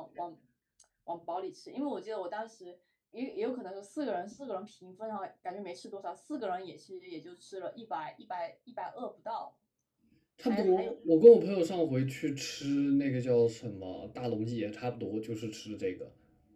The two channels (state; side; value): identical; both; correlation 1.00